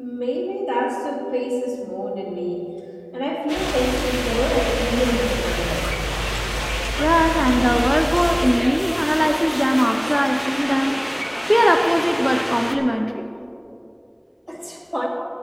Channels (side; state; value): both; identical; correlation 1.00